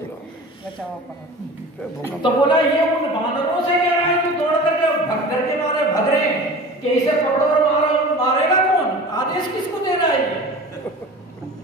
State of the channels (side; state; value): both; normal; correlation 0.38